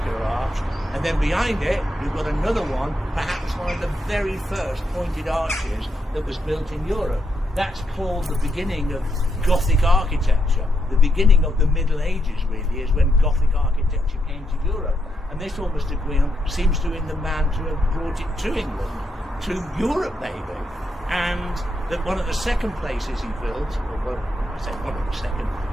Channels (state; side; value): normal; both; correlation 0.81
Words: arch, and then behind it you've got another one, perhaps one of the very first pointed arches that was built in Europe. That's called the beginning of Gothic architecture. The beginning of the Middle Ages, really, is when Gothic architecture came to Europe. And this Auguste de Guyon seems to be the man to have brought it to England, to Europe maybe. And that one of the second places he built, or I say one of the second,